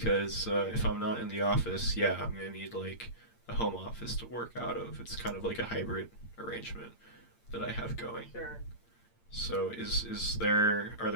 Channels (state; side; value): late; right; 8.8 ms